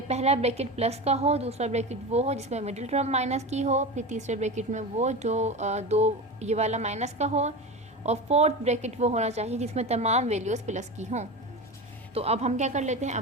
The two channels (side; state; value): both; normal; correlation 0.25